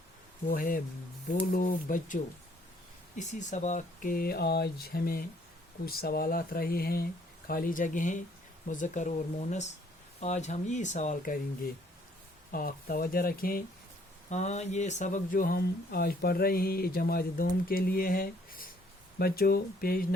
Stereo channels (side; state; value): both; normal; correlation 0.63